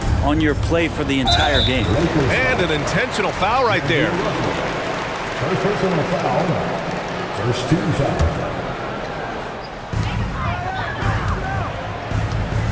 on your play for the entire game. And an intentional foul right there. First personal foul. First team foul.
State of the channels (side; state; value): both; identical; correlation 1.00